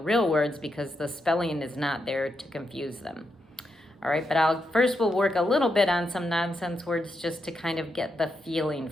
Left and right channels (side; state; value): both; normal; correlation 0.83